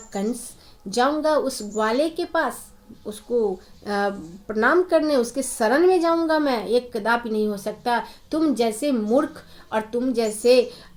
कंस जाऊंगा उस ग्वाले के पास, उसको प्रणाम करने, उसके शरण में जाऊंगा मैं? ये कदापि नहीं हो सकता। तुम जैसे मूर्ख और तुम जैसे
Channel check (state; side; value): identical; both; correlation 1.00